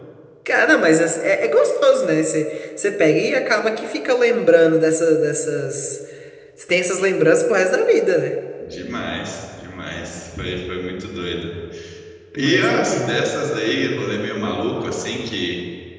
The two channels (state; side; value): identical; both; correlation 1.00